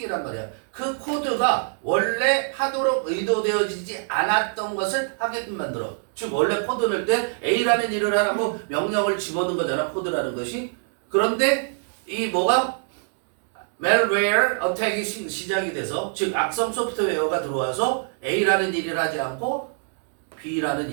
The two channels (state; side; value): silent; left; 62 dB below the other